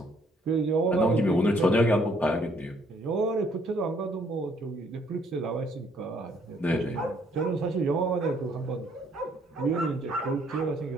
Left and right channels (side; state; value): both; normal; correlation 0.66